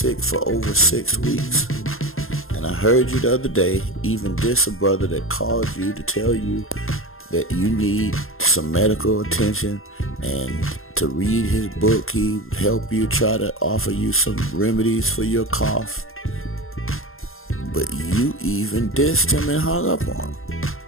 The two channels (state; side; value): late; right; 0.61 ms